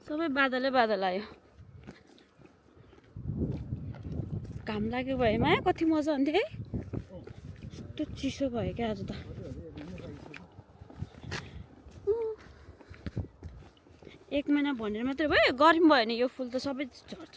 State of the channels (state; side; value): identical; both; correlation 1.00